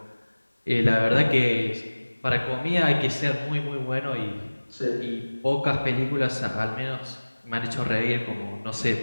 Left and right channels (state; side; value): inverted; both; correlation -1.00